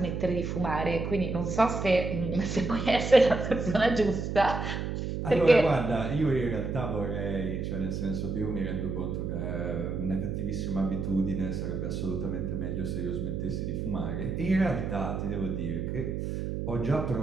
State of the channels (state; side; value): noise; right; hum, 3 dB below the sound